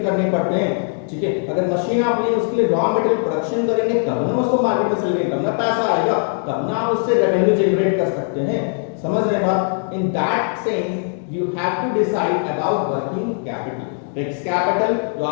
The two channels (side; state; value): right; silent; 62 dB below the other